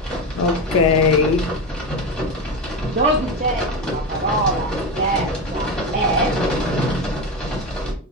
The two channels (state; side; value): normal; both; correlation 0.18